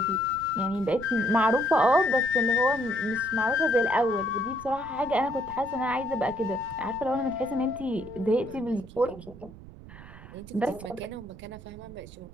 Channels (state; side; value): noise; right; rumble, 17 dB below the sound